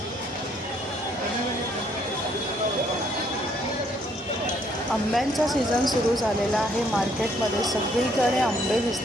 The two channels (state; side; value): normal; both; correlation 0.67